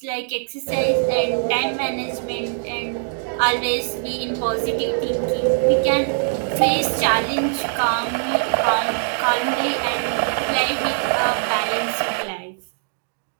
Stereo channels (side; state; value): left; silent; digital silence